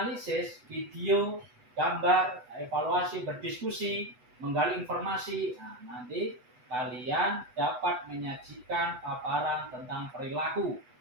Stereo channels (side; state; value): left; late; 8.1 ms